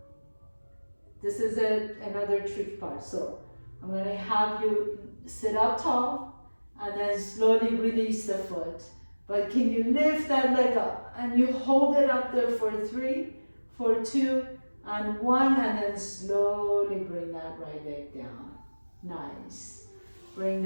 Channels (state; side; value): inverted; both; correlation -1.00